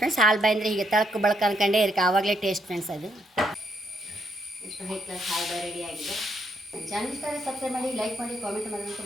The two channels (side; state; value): both; normal; correlation 0.75